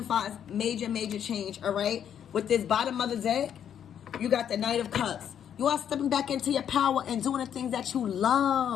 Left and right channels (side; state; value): right; quieter; 9.1 dB